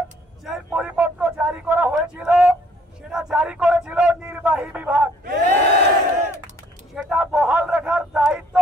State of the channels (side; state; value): both; normal; correlation 0.61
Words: যে পরিপত্র জারি করা হয়েছিল সেটা জারি করেছিল নির্বাহী বিভাগ, সেটা বহাল রাখার দায়িত্ব